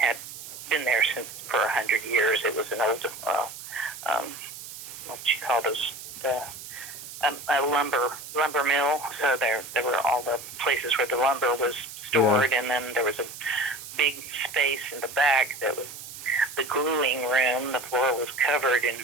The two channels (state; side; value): noise; right; hiss, 12 dB below the sound